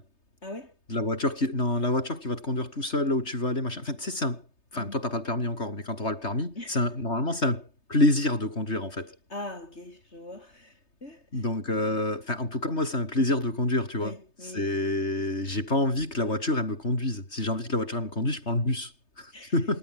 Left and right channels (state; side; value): late; right; 3.3 ms